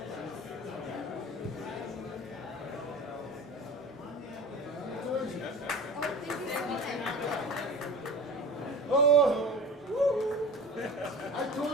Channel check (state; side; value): normal; both; correlation 0.35